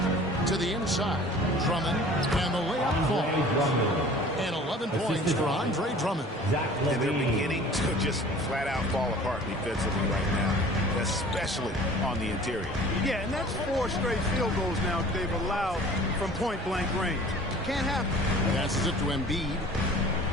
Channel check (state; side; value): normal; both; correlation 0.46